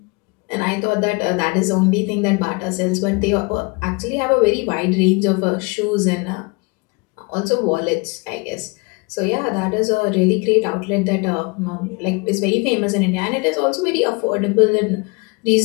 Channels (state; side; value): quieter; right; 29.7 dB